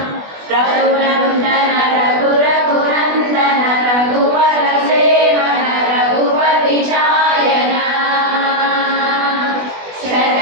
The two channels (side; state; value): left; late; 20 ms